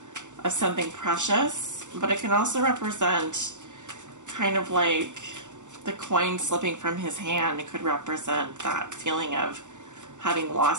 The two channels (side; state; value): left; late; 0.85 ms